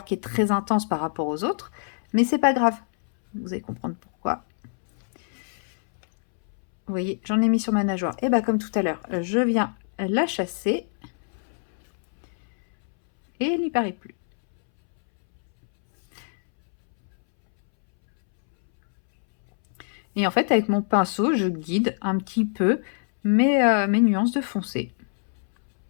qui est très intense par rapport aux autres. Mais c'est pas grave. Vous allez comprendre pourquoi. Vous voyez, j'en ai mis sur ma nageoire. Et bien, comme tout à l'heure, je viens la chasser. Et elle n'y paraît plus. Et en fait, avec mon pinceau, je guide un petit peu mes nuances de foncé.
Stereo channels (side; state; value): right; silent; 62 dB below the other